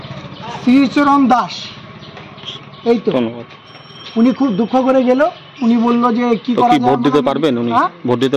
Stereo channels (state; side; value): identical; both; correlation 1.00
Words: শ্রীচরণ দাস। এই তো উনি খুব দুঃখ করে গেল, উনি বললো যে কি করা যায়, ভোট দিতে পারবেন উনি? ভোট দিতে